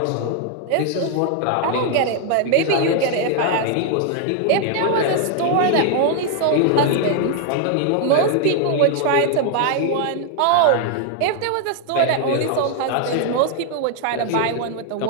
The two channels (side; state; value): both; different; correlation 0.00